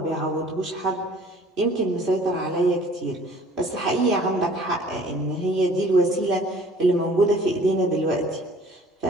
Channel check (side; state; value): both; normal; correlation 0.52